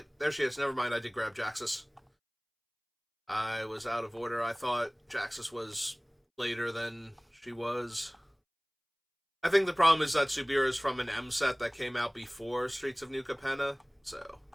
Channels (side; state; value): both; identical; correlation 1.00